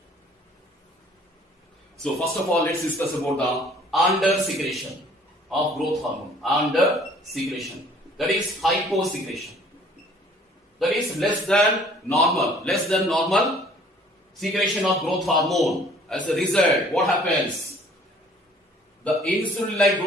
So first of all, let's discuss about the under secretion of growth hormone. Under secretion, that is hyposecretion. That is less than normal secretion of growth hormone. As a result, what happens? The insulin-like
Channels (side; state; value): both; normal; correlation 0.55